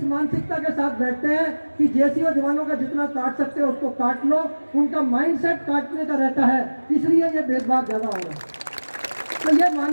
मानसिकता के साथ बैठते हैं कि जेसीओ जवानों का जितना काट सकते हो उसको काट लो। उनका माइंडसेट काटने का रहता है, इसलिए ये भेदभाव ज़्यादा हो रहा है। तो ये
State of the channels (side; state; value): both; inverted; correlation -1.00